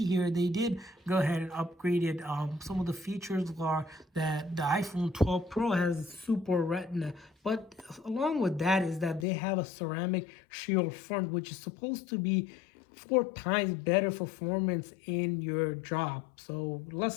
here, they did go ahead and upgrade it. Some of the features are that the iPhone 12 Pro has Super Retina, but along with that is that they have a ceramic shield front, which is supposed to be 4 times better performance in your job, so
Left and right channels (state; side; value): drops out; right; at 9.2 s